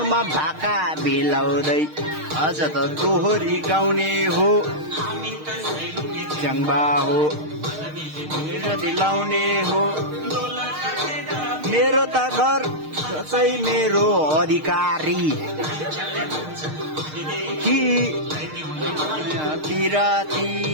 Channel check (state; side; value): late; left; 6.5 ms